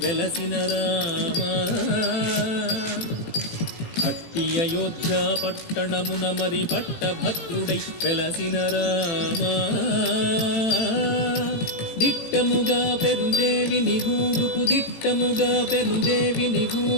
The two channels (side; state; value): right; late; 18 ms